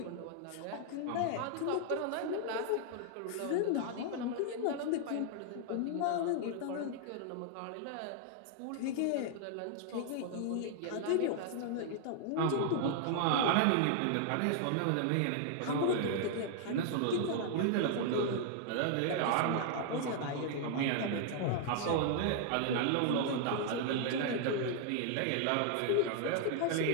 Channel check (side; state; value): both; different; correlation 0.00